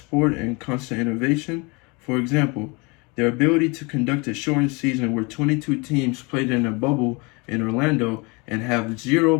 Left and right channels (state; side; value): quieter; right; 28.4 dB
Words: in constant innovation. For example, their ability to conduct a shortened season where 22 teams played in a bubble in Orlando and have 0